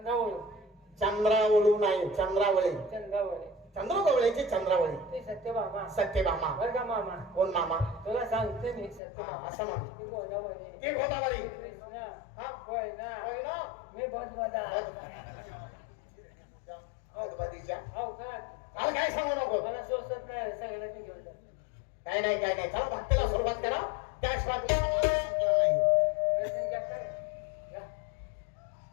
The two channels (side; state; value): right; drops out; at 9.0 s